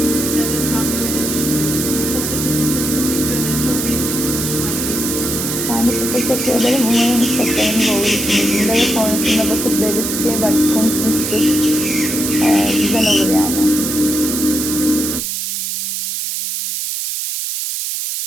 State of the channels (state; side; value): noise; right; hiss, 2 dB below the sound